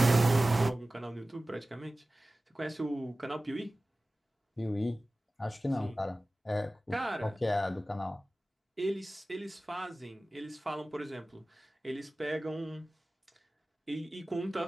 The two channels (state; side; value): normal; both; correlation 0.97